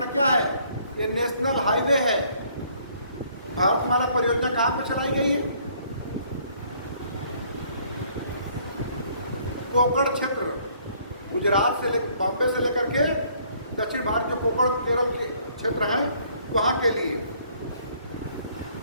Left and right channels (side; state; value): both; inverted; correlation -0.62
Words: क्या है? ये नेशनल हाईवे है। भारतमाला परियोजना कहाँ पे चलाई गई है? कोकण क्षेत्र, गुजरात से बॉम्बे से लेकर के दक्षिण भारत के कोकण केरल के क्षेत्र हैं, वहां के लिए।